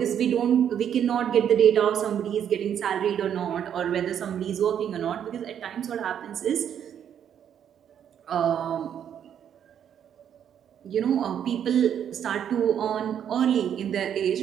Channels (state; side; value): quieter; left; 9.1 dB